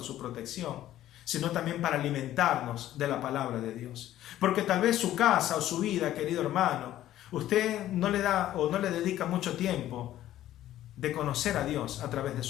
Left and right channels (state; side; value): quieter; right; 13.2 dB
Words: su protección, sino también para alimentarnos de la palabra de Dios. Porque tal vez su casa o su vida, querido hermano, usted no le da o no le dedica mucho tiempo de conocer a Dios a través de